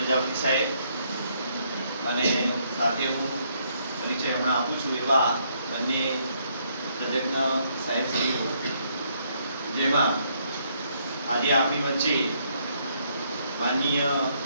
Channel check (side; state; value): both; inverted; correlation -0.71